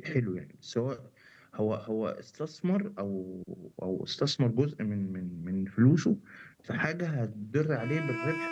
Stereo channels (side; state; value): both; identical; correlation 1.00